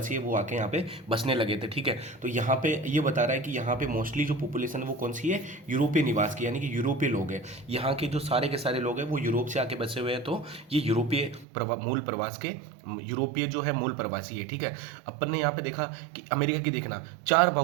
है वो आके यहाँ पे बसने लगे थे। ठीक है, तो यहाँ पे ये बता रहा है कि यहाँ पे मोस्टली जो पॉपुलेशन है वो कौन सी है, यूरोपीय निवास की, यानी कि यूरोपीय लोग हैं। यहाँ के जो सारे के सारे लोग हैं वो यूरोप से आके बसे हुए हैं। तो ये यूरोपीय मूल प्रवास के यूरोपीय जो है मूल प्रवासी है। ठीक है, अपन ने यहाँ पे देखा कि अमेरिका की देखना 4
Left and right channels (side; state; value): left; drops out; at 11.5 s